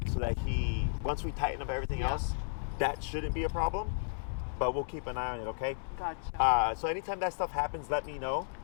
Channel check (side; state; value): right; silent; digital silence